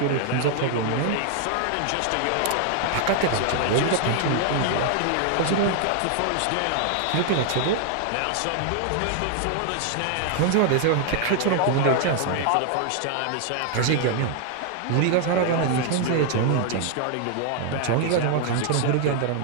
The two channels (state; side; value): different; both; correlation 0.00